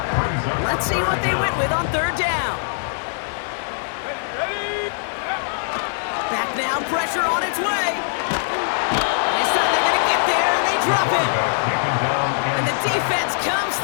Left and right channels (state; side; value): silent; right; digital silence